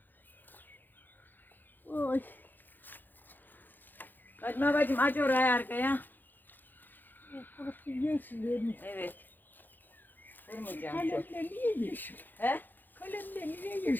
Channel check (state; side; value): late; right; 0.089 ms